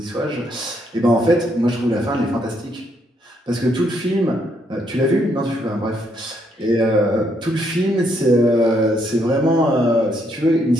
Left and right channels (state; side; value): normal; both; correlation 0.73